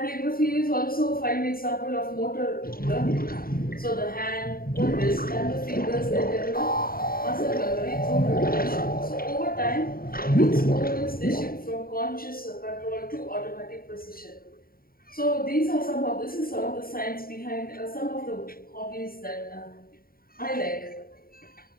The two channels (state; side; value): late; right; 0.43 ms